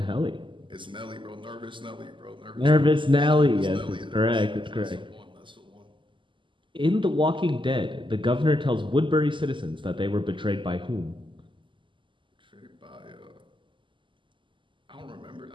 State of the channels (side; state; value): left; late; 0.24 ms